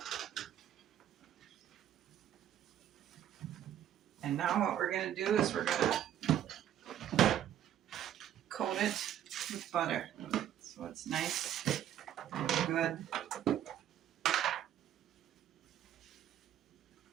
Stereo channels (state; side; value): quieter; left; 10.8 dB